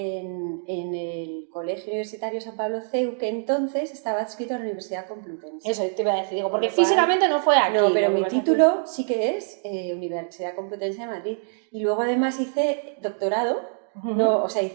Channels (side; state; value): left; silent; digital silence